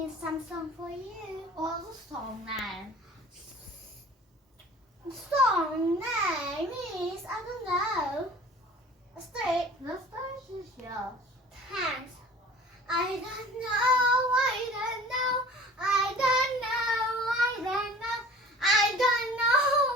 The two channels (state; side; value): normal; both; correlation 0.46